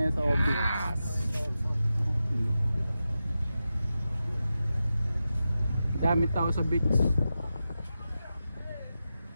sa Obi. Dami tao sa beach.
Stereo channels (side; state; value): both; inverted; correlation -0.91